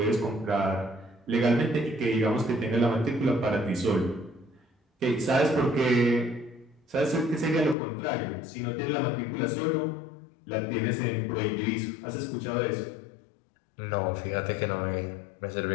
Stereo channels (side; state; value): right; drops out; at 7.8 s